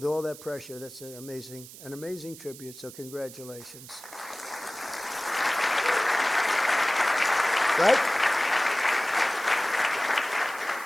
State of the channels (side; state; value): right; noise; hiss, 16 dB below the sound